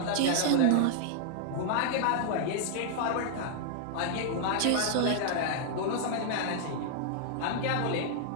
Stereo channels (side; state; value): both; different; correlation -0.01